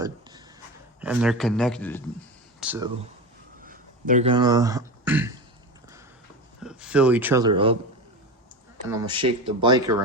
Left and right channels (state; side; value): normal; both; correlation 0.25